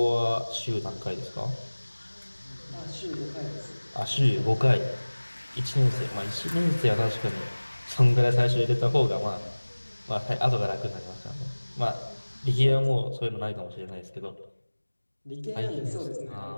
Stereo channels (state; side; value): inverted; both; correlation -1.00